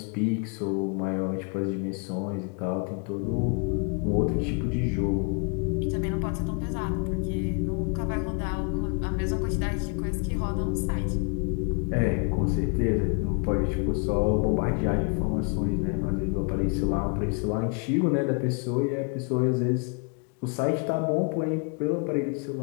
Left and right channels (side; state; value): right; quieter; 37.1 dB